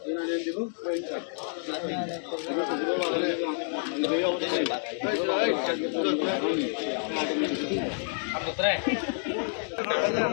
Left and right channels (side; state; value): right; silent; digital silence